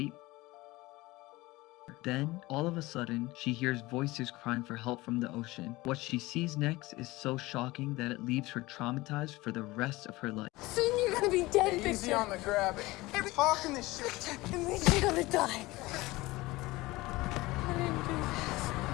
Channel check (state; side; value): quieter; right; 20.3 dB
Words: Then, all of a sudden, she hears voices crying for help from the ocean. What she sees next is so shocking that it leaves her traumatized for the rest of her life. Soon you're gonna be dead, Victor. Easy on the grab. Hey, we're talking this shit. It means you're gonna die. I didn't do this.